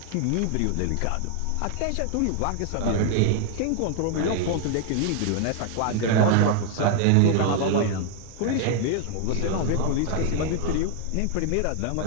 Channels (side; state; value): both; different; correlation 0.00